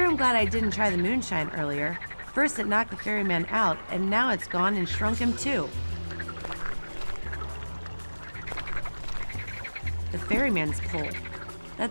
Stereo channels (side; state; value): both; inverted; correlation -1.00